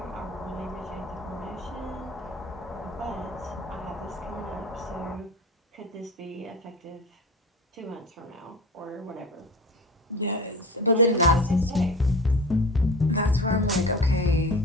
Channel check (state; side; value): normal; both; correlation 0.34